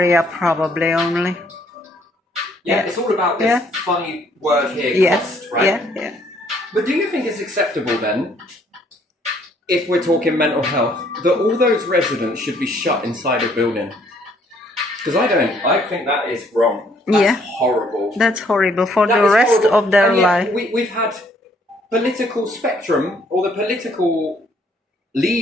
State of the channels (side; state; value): both; normal; correlation 0.65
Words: probably only. Yeah, it's all about this funny word here, cost, right? Yeah. But do you think it's acceptable then, if we're talking mental health, that all those residents should be shut inside a building? Because I don't. I think that is wrong. That's horrible. That's horrible for the rest of their life. We've had political spectrum, or the political